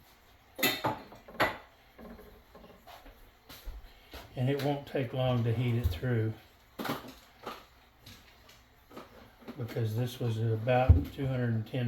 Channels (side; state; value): both; identical; correlation 1.00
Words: And it won't take long to heat it through because this was at about